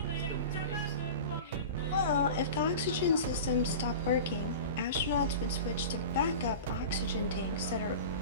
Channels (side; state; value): both; inverted; correlation -0.33